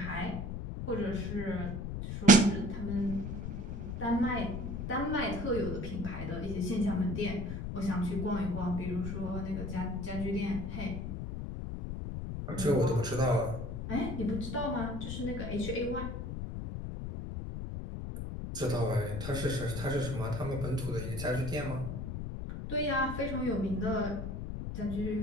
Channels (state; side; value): noise; left; rumble, 5 dB below the sound